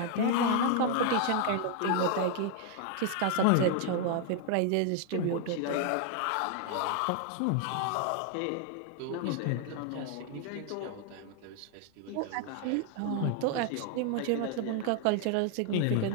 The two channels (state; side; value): different; both; correlation 0.00